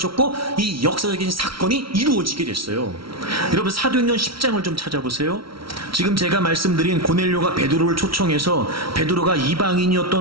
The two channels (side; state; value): left; late; 0.75 ms